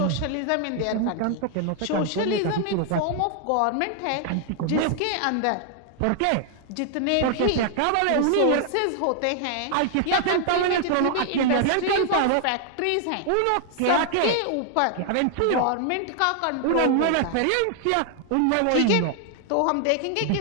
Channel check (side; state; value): both; different; correlation 0.00